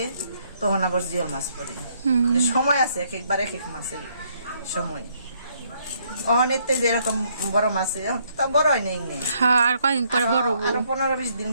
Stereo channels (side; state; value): both; inverted; correlation -0.69